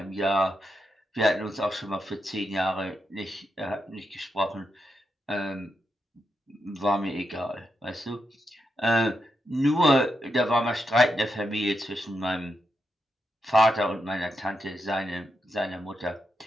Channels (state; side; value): normal; both; correlation 0.84